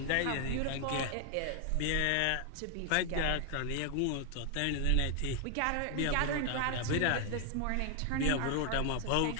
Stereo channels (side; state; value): both; different; correlation 0.00